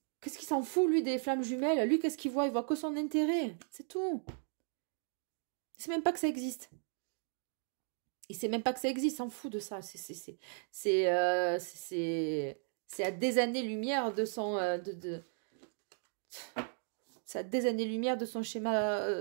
Qu'est-ce qu'il s'en fout, lui, des flammes jumelles? Lui, qu'est-ce qu'il voit? Il voit que son intérêt. C'est tout. Il sait même pas que ça existe. Il sait même pas que ça existe. Il s'en fout de ça. C'est à des années-lumière de son... C'est à des années-lumière de son schéma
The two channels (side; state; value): left; silent; 54 dB below the other